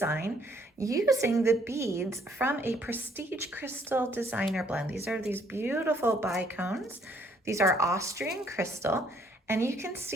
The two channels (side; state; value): both; normal; correlation 0.65